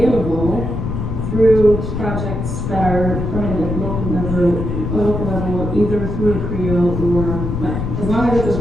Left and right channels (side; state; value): left; noise; rumble, 3 dB below the sound